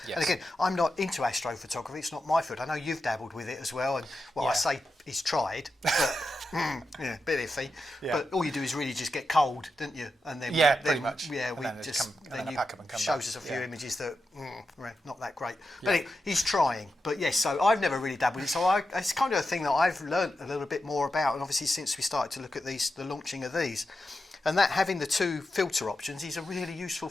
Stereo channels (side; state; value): both; normal; correlation 0.89